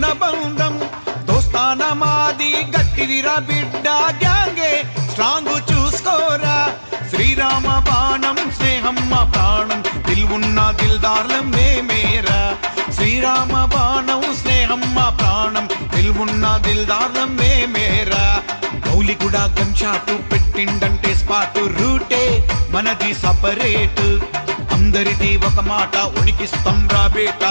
బంధం దోస్తాన మాది గట్టిదిరా బిడ్డ గ్యాంగే స్ట్రాంగ్ చూసుకోరా శ్రీరామ బాణం స్నేహం మా ప్రాణం దిల్వున్న దిల్దార్లం మేమేరా శ్రీరామ బాణం స్నేహం మా ప్రాణం దిల్వున్న దిల్దార్లం మేమేరా గౌలిగూడ గన్ షాటు పెట్టిండంటే స్పాటు రూటే మనది సపరేట్ అందరిది ఒక మాట ఉనికిస్తాం రా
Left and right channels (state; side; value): inverted; both; correlation -1.00